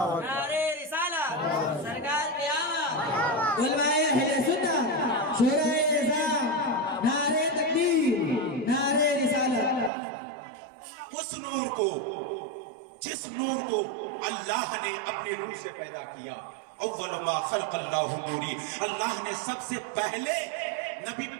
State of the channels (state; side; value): drops out; left; at 9.9 s